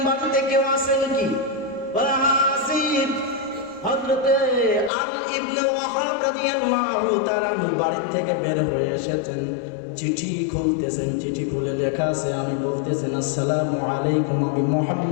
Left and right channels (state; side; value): drops out; right; at 4.9 s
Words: বাড়িতে কেউ আছেন কি? বলে, হাসিব। হযরত আল ইবনে ওয়াহাব রাদিয়াল্লাহু তাআলা বাড়ি থেকে বের হয়ে এসেছেন, চিঠি খুলতেছেন। চিঠি খুলে লেখা আছে, আমি বলতেছেন, আসসালামু আলাইকুম, আমি